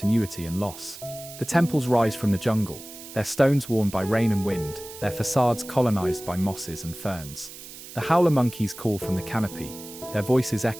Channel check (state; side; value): noise; right; hiss, 15 dB below the sound